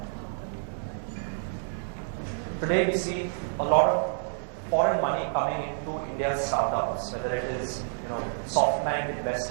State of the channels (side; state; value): left; silent; digital silence